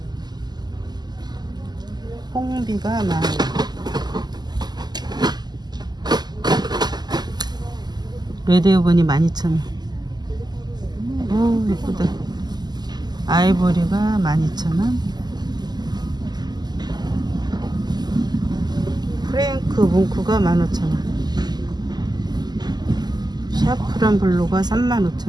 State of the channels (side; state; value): left; late; 0.20 ms